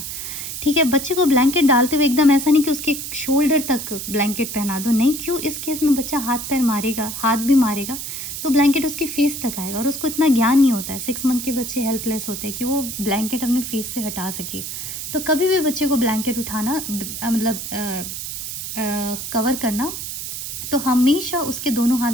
ठीक है? बच्चे को ब्लैंकेट डालते हुए एकदम ऐसा नहीं कि उसके शोल्डर तक ब्लैंकेट पहना दो, नहीं। क्यों? इस केस में बच्चा हाथ पैर मारेगा, हाथ भी मारेगा, तो ब्लैंकेट उसकी फेस तक आएगा, और उसको इतना ज्ञान नहीं होता है। 6 मंथ के बच्चे हेल्पलेस होते हैं कि वो ब्लैंकेट अपने फेस से हटा सके। तो कभी भी बच्चे को ब्लैंकेट उठाना मतलब कवर करना, तो हमेशा उसके दोनों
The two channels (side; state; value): right; noise; hiss, 6 dB below the sound